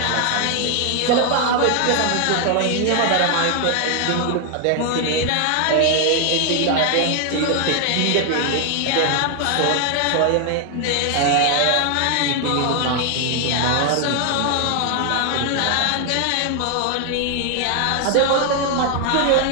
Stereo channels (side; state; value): both; different; correlation 0.00